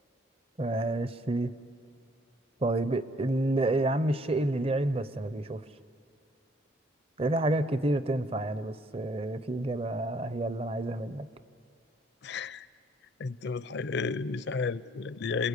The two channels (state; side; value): normal; both; correlation 0.63